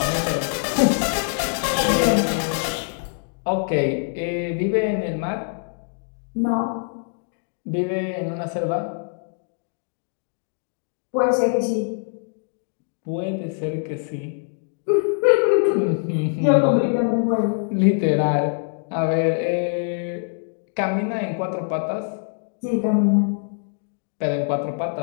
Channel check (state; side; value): silent; right; 63 dB below the other